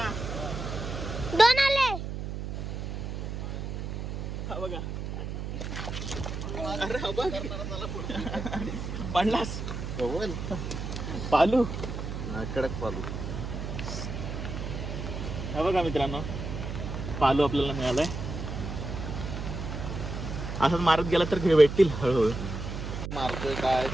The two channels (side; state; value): right; noise; hum, 5 dB below the sound